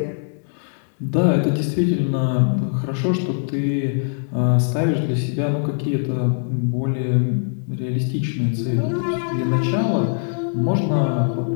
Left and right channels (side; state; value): right; silent; 65 dB below the other